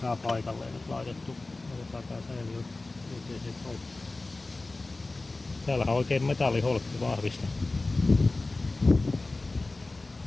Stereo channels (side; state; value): right; quieter; 3.2 dB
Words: paikalleen nyt laitettu, otetaan tää säiliö. Täällä on oikein metalliholkki vahvista.